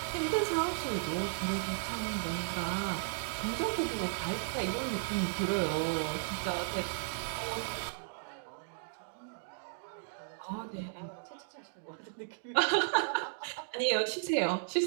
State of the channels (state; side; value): silent; left; digital silence